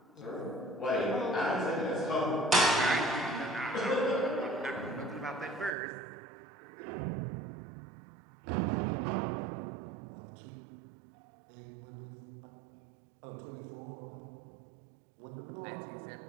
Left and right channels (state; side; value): drops out; left; at 5.8 s